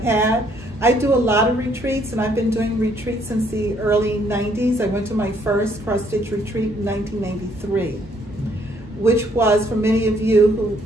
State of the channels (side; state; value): both; normal; correlation 0.67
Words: had. I do a lot of retreats, and I've been doing retreats since the early 90s. I went to my first cross-stitch retreat in 1993, which was, for many of you